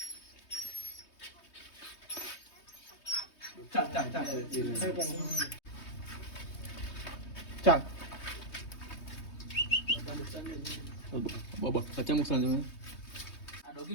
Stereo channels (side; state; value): right; late; 3.2 ms